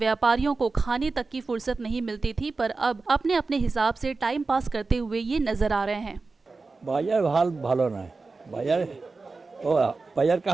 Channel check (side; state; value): left; quieter; 3.9 dB